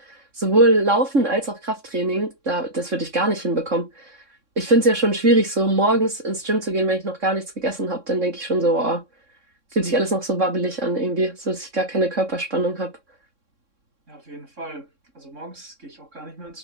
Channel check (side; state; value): left; late; 3.6 ms